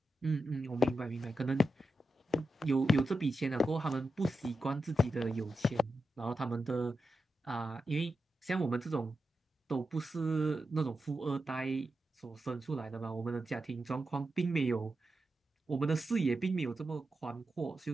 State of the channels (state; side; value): normal; both; correlation 0.89